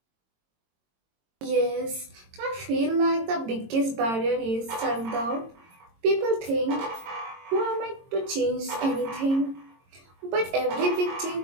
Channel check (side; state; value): left; late; 22 ms